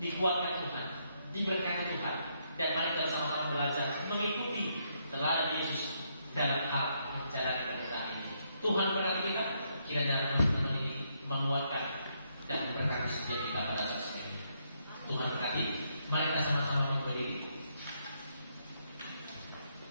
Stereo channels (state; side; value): inverted; both; correlation -0.76